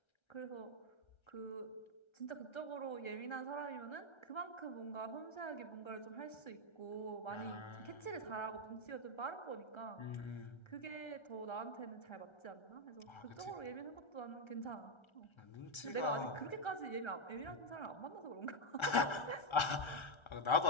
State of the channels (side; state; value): right; late; 1.3 ms